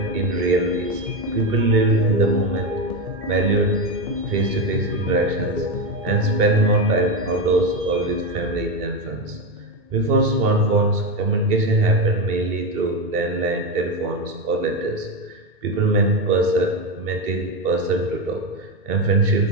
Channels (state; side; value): late; left; 2.2 ms